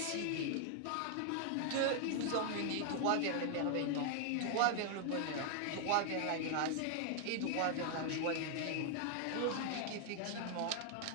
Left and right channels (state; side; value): different; both; correlation 0.00